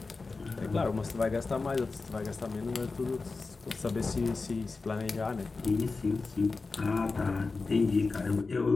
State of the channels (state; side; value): quieter; right; 4.0 dB